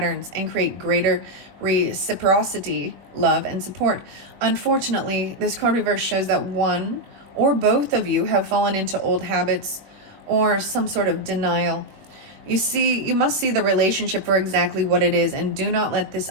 and create greater reciprocity, love, and support. Unfortunately, this card reverse shows that one or both of you have fallen into old habits or some sort of denial. You must see the relationship for exactly what it is, and do not let this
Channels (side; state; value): left; late; 21 ms